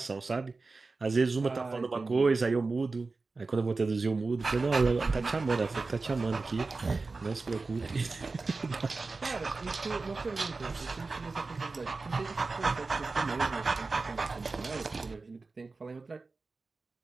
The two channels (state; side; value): quieter; left; 3.8 dB